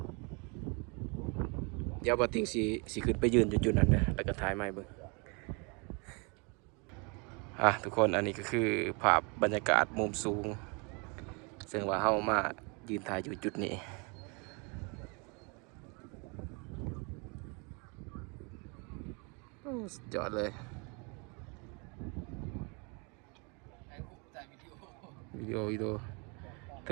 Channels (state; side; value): quieter; left; 32.3 dB